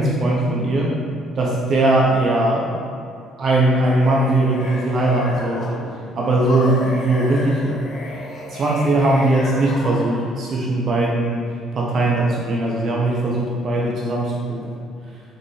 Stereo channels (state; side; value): normal; both; correlation 0.66